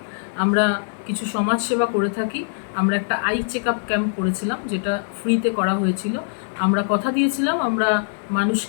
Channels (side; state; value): right; silent; digital silence